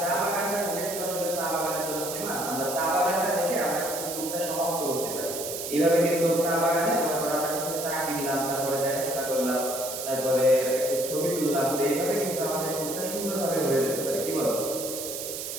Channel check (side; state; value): right; noise; hiss, 6 dB below the sound